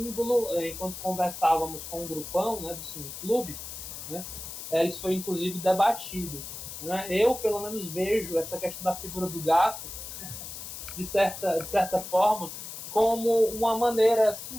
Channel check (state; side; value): noise; left; hiss, 10 dB below the sound